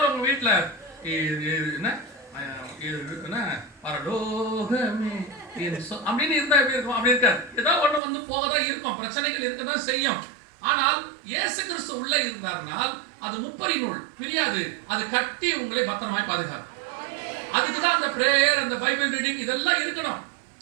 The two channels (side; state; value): left; drops out; at 8.0 s